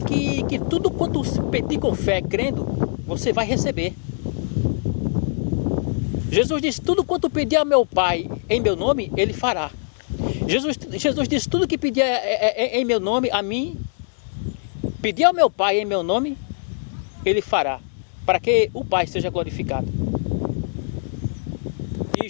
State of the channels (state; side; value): silent; right; digital silence